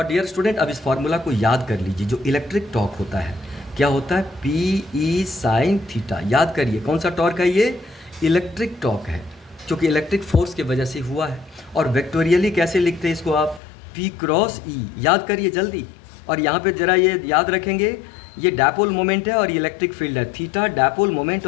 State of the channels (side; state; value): right; drops out; at 13.6 s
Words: डियर स्टूडेंट अब इस फॉर्मूला को याद कर लीजिए। जो इलेक्ट्रिक टॉर्क होता है क्या होता है? P E sine theta. याद करिए कौन सा टॉर्क है ये? इलेक्ट्रिक टॉर्क है, क्योंकि इलेक्ट्रिक फोर्स की वजह से हुआ है। और वेक्टोरियली कैसे लिखते हैं इसको आप? पी क्रॉस ई। याद करिए जल्दी। और यहाँ पे जरा ये याद रखेंगे, ये डायपोल मोमेंट है और ये इलेक्ट्रिक फील्ड है। थीटा डायपोल मोमेंट